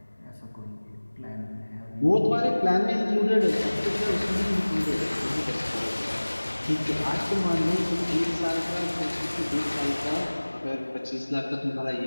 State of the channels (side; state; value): both; inverted; correlation -1.00